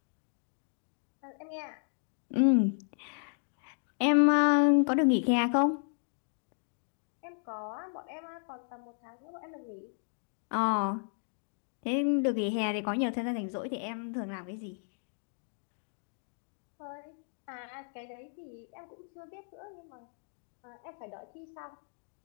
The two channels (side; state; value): right; silent; 55 dB below the other